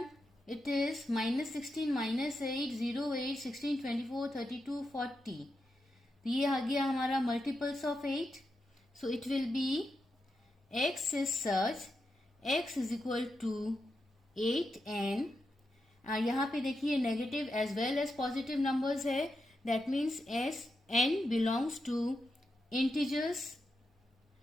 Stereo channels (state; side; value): normal; both; correlation 0.87